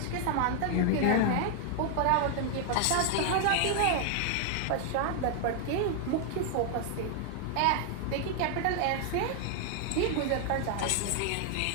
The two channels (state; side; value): different; both; correlation 0.00